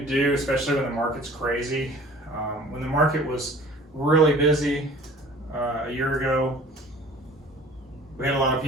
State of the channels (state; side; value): normal; both; correlation 0.47